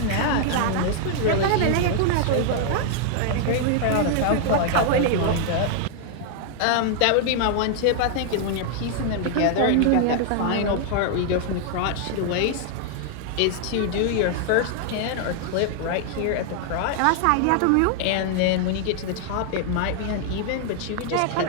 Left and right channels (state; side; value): different; both; correlation 0.00